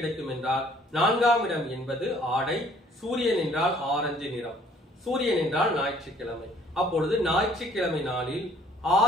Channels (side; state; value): both; normal; correlation 0.58